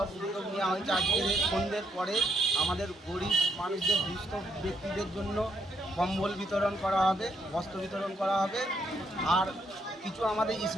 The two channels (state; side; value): normal; both; correlation 0.75